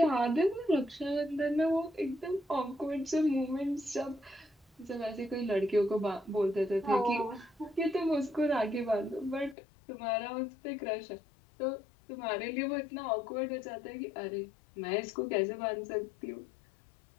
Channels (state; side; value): drops out; right; at 9.6 s